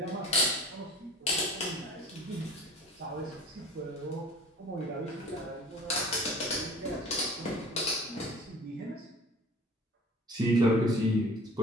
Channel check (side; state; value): both; normal; correlation 0.45